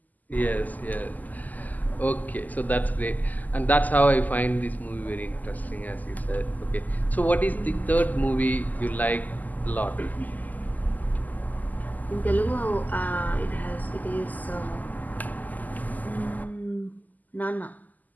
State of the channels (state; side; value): late; right; 0.081 ms